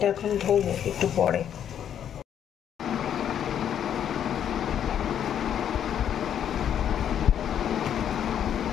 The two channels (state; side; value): quieter; right; 9.4 dB